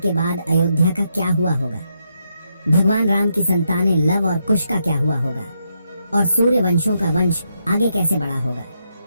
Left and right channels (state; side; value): inverted; both; correlation -0.81